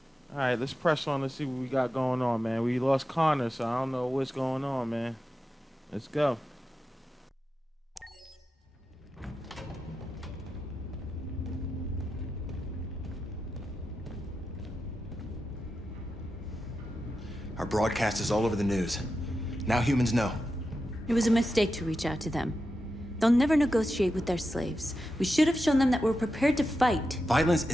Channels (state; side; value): normal; both; correlation 0.90